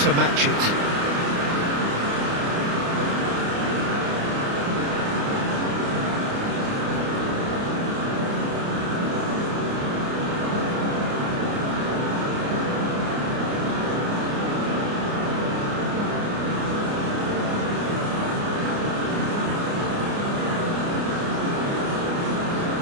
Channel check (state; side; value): late; left; 29 ms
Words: to match it.